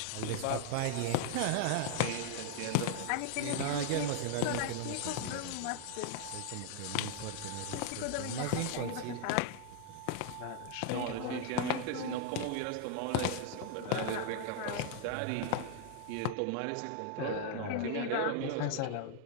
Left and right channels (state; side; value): different; both; correlation 0.00